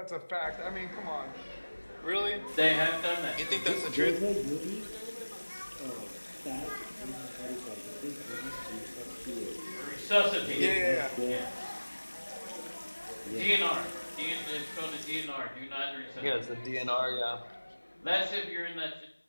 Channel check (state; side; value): inverted; both; correlation -1.00